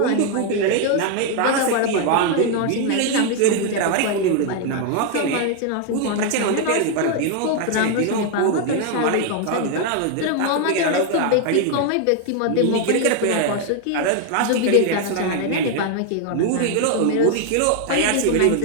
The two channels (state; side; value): different; both; correlation 0.00